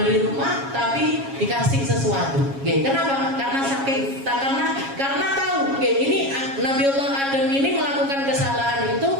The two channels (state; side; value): late; left; 7.3 ms